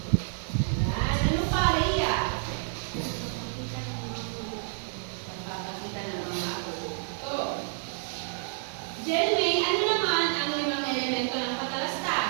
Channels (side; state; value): left; silent; 58 dB below the other